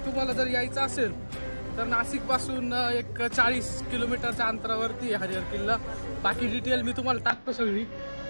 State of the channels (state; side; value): inverted; both; correlation -1.00